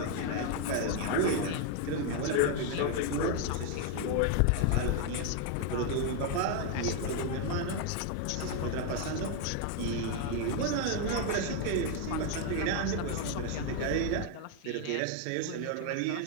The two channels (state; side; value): different; both; correlation 0.01